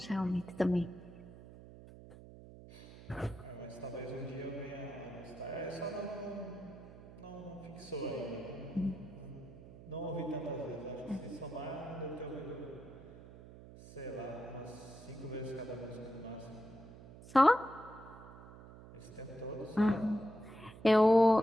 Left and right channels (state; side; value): noise; right; hum, 17 dB below the sound